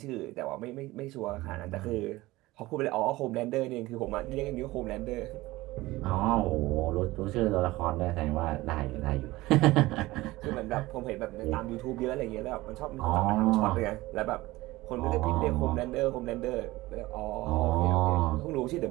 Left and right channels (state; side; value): quieter; left; 19.0 dB